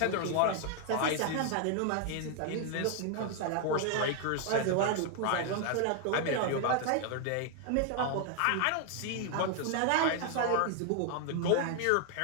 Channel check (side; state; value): both; different; correlation 0.00